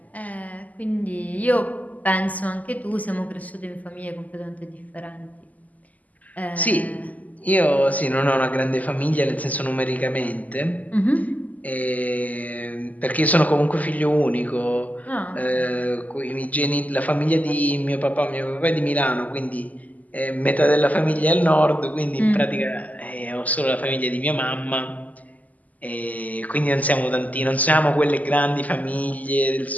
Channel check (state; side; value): late; right; 0.076 ms